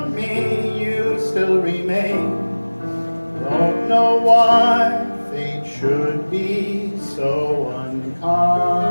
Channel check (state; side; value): inverted; both; correlation -1.00